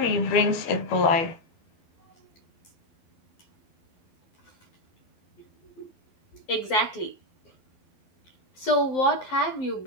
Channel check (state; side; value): late; right; 12 ms